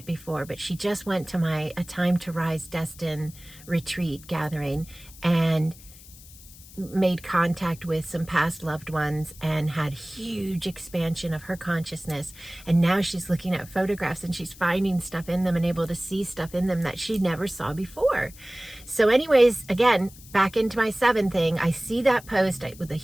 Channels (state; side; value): noise; left; hiss, 20 dB below the sound